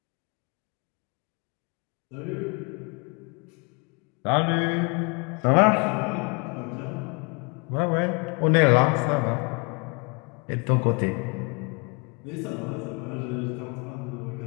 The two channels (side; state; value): right; quieter; 32.2 dB